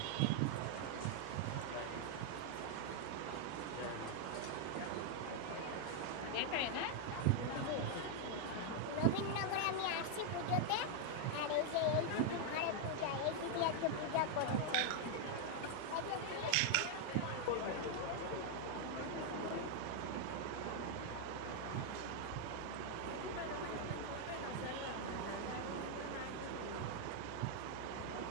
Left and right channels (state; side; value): different; both; correlation 0.00